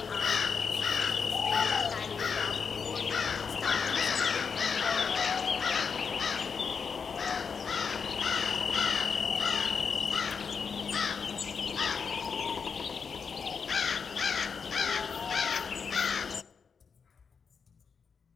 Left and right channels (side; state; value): right; quieter; 5.9 dB